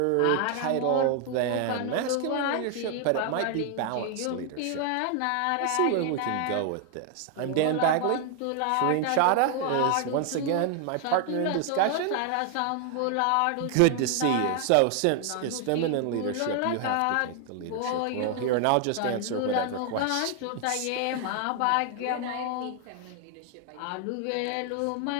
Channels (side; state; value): both; different; correlation 0.00